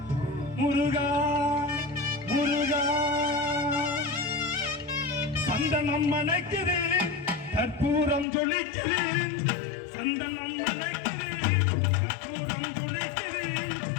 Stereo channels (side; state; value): right; drops out; at 8.2 s